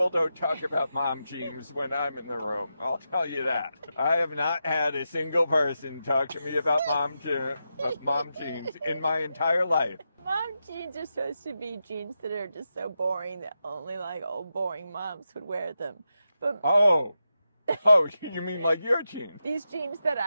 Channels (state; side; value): inverted; both; correlation -0.88